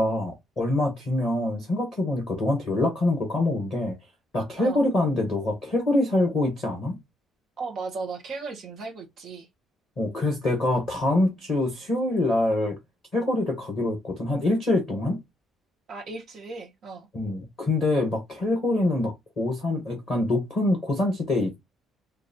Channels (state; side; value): normal; both; correlation 0.76